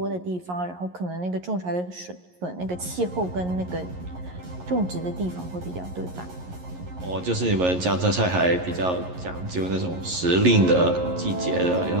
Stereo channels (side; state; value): left; late; 11 ms